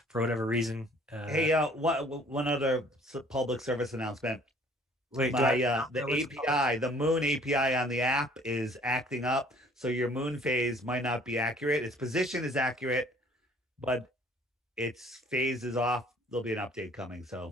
for whatever reason... Hey, one other public service announcement. Wait, the API, the Moon API on the app is acting up, so your moon phase might not be accurate. Its position is accurate, but its phase is off. There'll be an update coming,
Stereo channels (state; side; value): normal; both; correlation 0.56